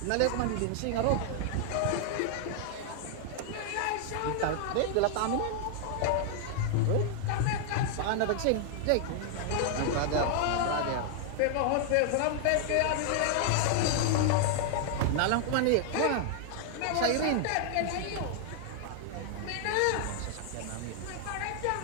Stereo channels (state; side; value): different; both; correlation -0.01